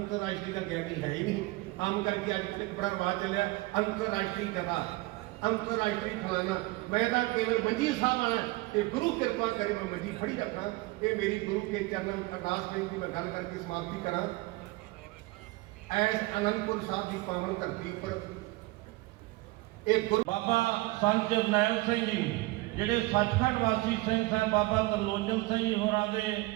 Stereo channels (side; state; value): left; quieter; 21.0 dB